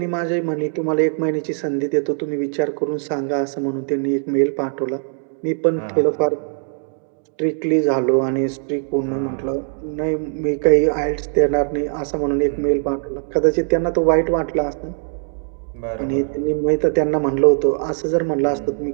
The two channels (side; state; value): left; silent; 65 dB below the other